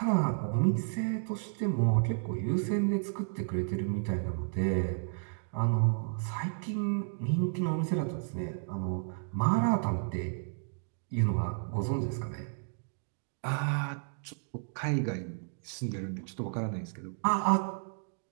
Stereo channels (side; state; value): left; silent; digital silence